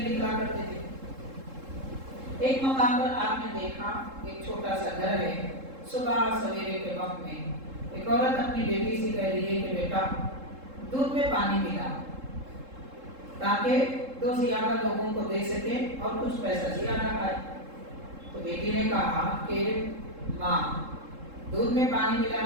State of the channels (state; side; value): late; left; 3.7 ms